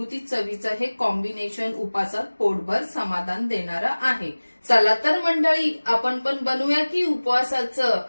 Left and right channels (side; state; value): both; inverted; correlation -1.00